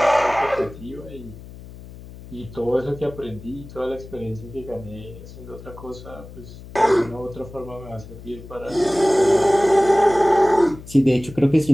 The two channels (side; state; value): left; noise; hum, 16 dB below the sound